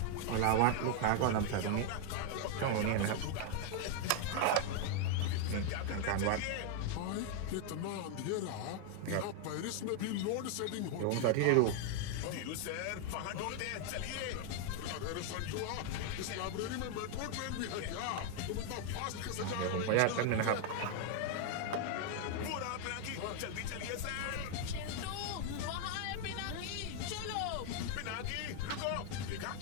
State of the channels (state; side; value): different; both; correlation 0.00